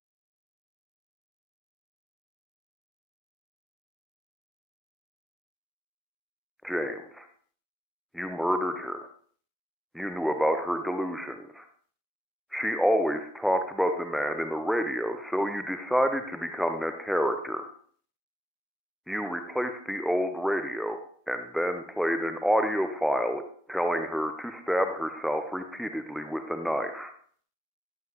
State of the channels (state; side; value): normal; both; correlation 0.86